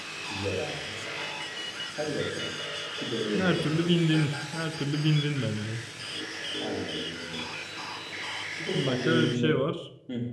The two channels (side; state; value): both; identical; correlation 1.00